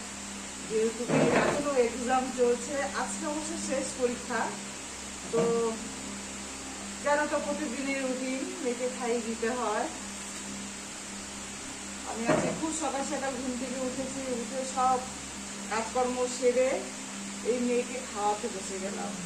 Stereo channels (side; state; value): both; identical; correlation 1.00